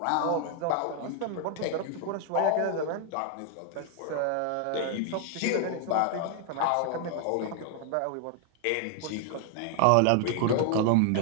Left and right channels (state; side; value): different; both; correlation 0.00